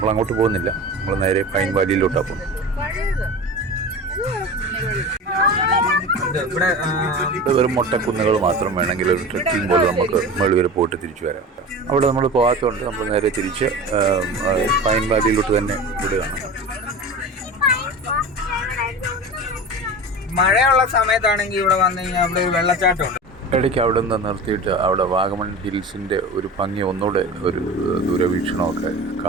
അങ്ങോട്ട് പോകുന്നില്ല, നമ്മൾ നേരെ പൈൻ വാലിയിലോട്ടാണ് പോകുന്നത്. ഇവിടെ വെറും മൊട്ടക്കുന്നുകൾ മാത്രം. വേണമെങ്കിൽ ഒരു ട്രെക്കിംഗ് പോലെ നമുക്ക് മുകളിൽ വരെ പോയിട്ട് തിരിച്ചു വരാം. അവിടെ നമ്മൾ പോകാത്തതുകൊണ്ട് നമ്മൾ നേരെ തിരിച്ച് പൈൻ വാലിയിലോട്ട് തന്നെ വിടുകയാണ്. മഴയുള്ള സമയത്താണെങ്കിൽ ഇവിടെ വന്നു കഴിഞ്ഞാൽ അവിടെ ഒരു വെള്ളച്ചാട്ടമുണ്ട്. ഇടയ്ക്ക് അവിടെ നിന്ന് നിർത്തിയിട്ട് അവിടെ വാഗമൺ ഹിൽസിൻ്റെ ഒരു ഭംഗി ഒന്നുകൂടെ ഒരു ദൂരവീക്ഷണമൊക്കെ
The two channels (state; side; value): normal; both; correlation 0.32